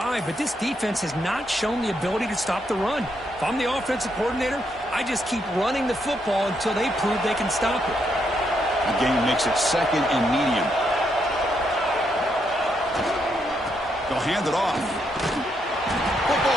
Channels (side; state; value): both; normal; correlation 0.78